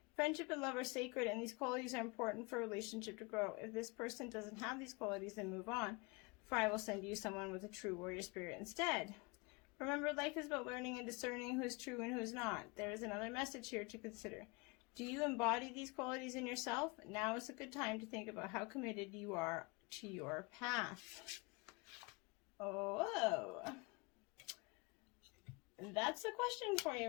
Friendship and love are sacred, and these qualities are important for a relationship to grow. If this person doesn't have these qualities, then move on, for I will send you someone with a true warrior spirit instead. Remember, life is about learning and discerning who is true and who is not. There is another message here to consider. Do you embody these qualities in yourself? Now is a good time to think about how committed you are to your path. Oh, that's the question for you,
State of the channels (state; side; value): quieter; right; 27.8 dB